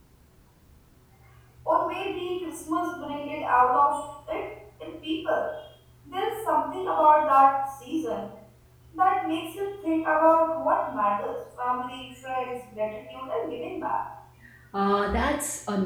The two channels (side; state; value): both; identical; correlation 1.00